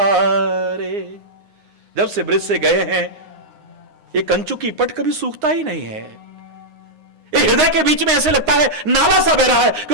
जब से ब्रिज से गए हैं, ये कंचु की पट कभी सूखता ही नहीं है। ये हृदय के बीच में ऐसे लगता है नाला सा बह रहा है,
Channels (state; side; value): late; left; 9.6 ms